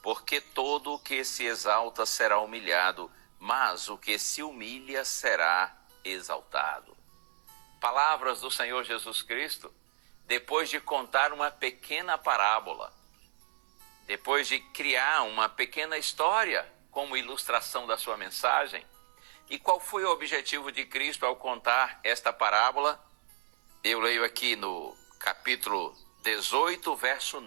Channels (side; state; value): left; silent; digital silence